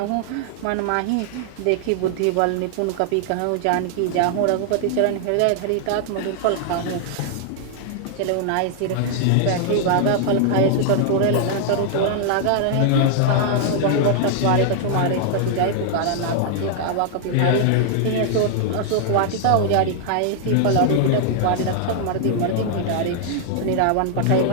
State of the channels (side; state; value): both; different; correlation -0.01